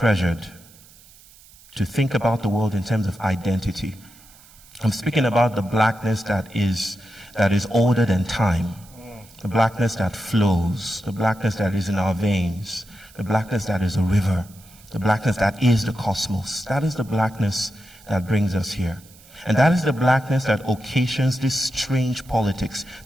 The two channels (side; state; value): right; noise; hiss, 24 dB below the sound